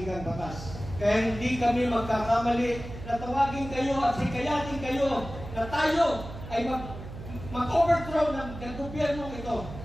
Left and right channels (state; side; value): noise; right; hum, 11 dB below the sound